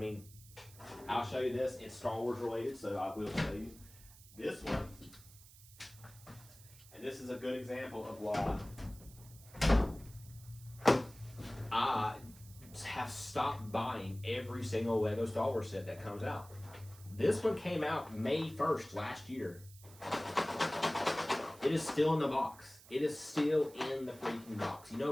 I'll show you this. It's Star Wars related, so I will show you this one. And this is a good example of why I have stopped buying every single Lego Star Wars set that comes out. This one came out May 1st last year. It is still in the box. It is still in the freaking box. You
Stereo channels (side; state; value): right; noise; hiss, 21 dB below the sound